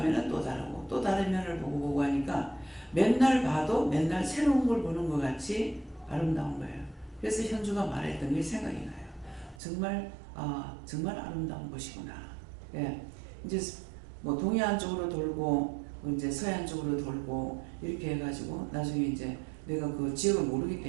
또 다르고 또 다른 면을 보고 하니까 맨날 봐도 맨날 새로운 걸 보는 것 같이 아름다운 거예요. 그래서 현주가 말했던 게 생각이 나요. 정말 아름다운 곳이구나. 예, 이제 뭐 동해안 쪽으로 돌고 이제 서해안 쪽으로 돌고 이렇게 해가지고 나중에 이제 내가 그 지역을 모르기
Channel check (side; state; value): left; drops out; at 9.6 s